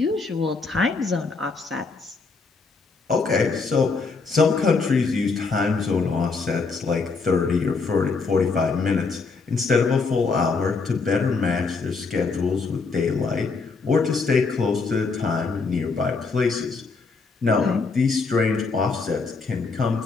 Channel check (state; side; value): quieter; right; 4.4 dB